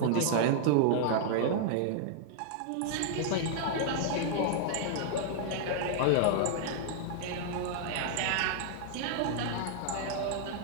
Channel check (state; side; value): different; both; correlation -0.01